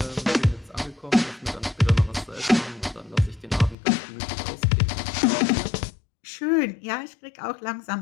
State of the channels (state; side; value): drops out; right; at 3.8 s